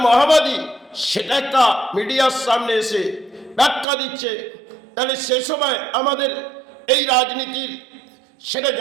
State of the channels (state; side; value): drops out; left; at 3.9 s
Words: মাওবাদী সেটা একটা মিডিয়ার সামনে এসে ব্যাখ্যা দিচ্ছে। তাহলে সে সময় আমাদের এই রাজনীতির সেটা